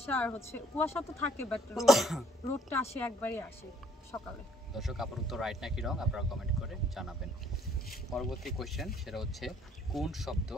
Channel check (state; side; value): normal; both; correlation 0.62